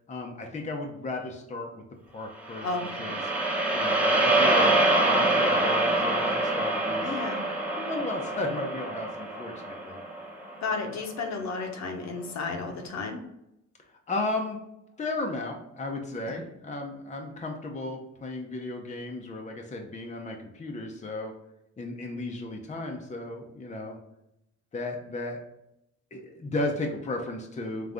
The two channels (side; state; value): both; normal; correlation 0.30